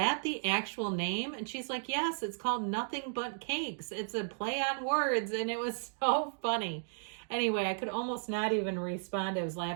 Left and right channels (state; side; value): silent; left; digital silence